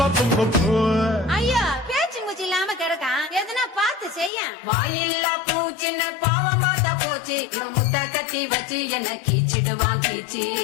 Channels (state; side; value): drops out; right; at 4.3 s